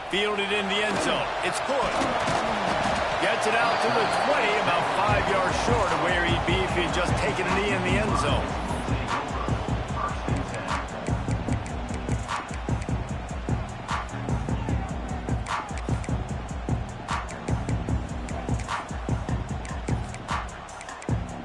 Fielded in the end zone. It's good. Gets it out to the 20, about 5 yards short of where he'd be if he'd just taken a knee in the end zone.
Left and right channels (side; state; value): both; identical; correlation 1.00